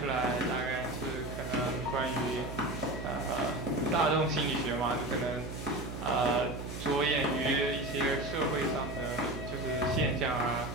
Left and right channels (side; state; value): right; noise; hum, 8 dB below the sound